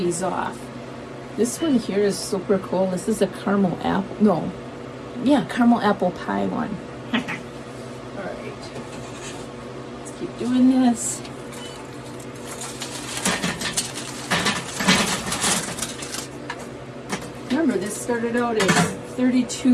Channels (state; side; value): identical; both; correlation 1.00